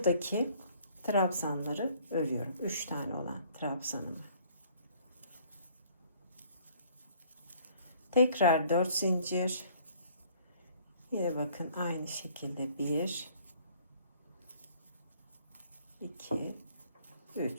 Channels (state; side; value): inverted; both; correlation -0.58